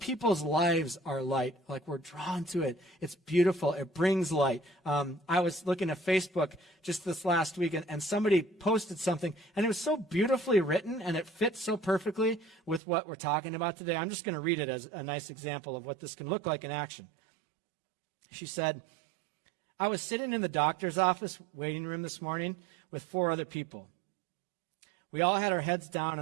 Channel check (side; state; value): left; drops out; at 12.8 s